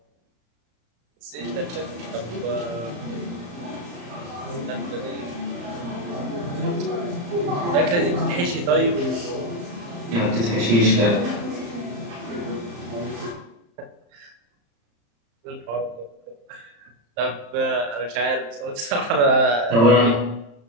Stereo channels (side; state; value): left; late; 35 ms